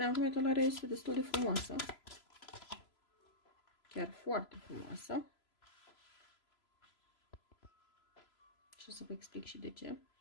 acum etalarea este destul de frumoasă. Chiar foarte frumoasă. Și o să vă explic și de ce.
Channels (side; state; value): right; late; 3.0 ms